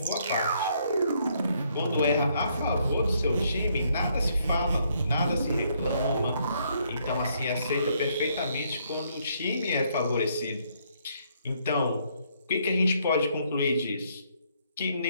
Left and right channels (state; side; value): inverted; both; correlation -0.70